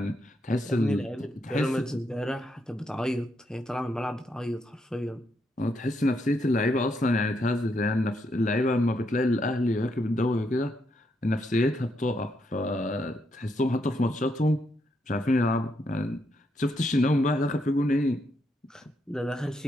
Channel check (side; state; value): both; normal; correlation 0.78